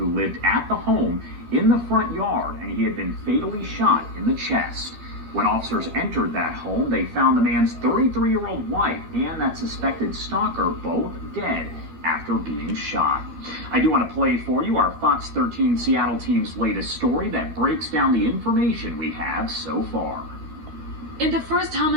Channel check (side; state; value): left; late; 13 ms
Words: lived at the home in the front yard, and he had been fatally shot in the chest. When officers entered that home, they found the man's 33-year-old wife and that suspected stalker both dead after being shot. I do want to play for you our Fox 13 Seattle team's latest story that breaks down the information we have so far. In the first